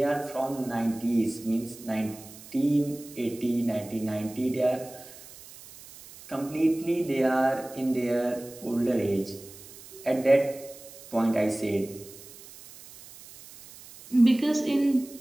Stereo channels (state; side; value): noise; right; hiss, 18 dB below the sound